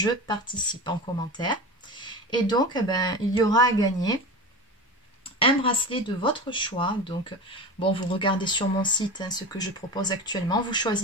participe » en commentaire. Et donc, il y aura à gagner un bracelet de votre choix. Donc, bon, vous regardez sur mon site ce que je propose actuellement. Vous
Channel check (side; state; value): both; normal; correlation 0.29